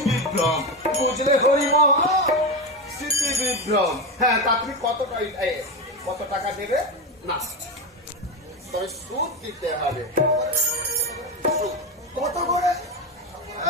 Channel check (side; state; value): both; normal; correlation 0.15